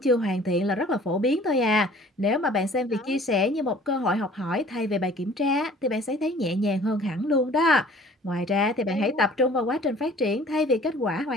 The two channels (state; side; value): normal; both; correlation 0.51